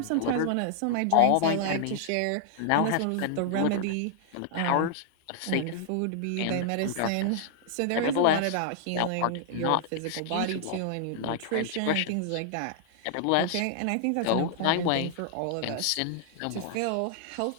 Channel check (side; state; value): both; different; correlation -0.01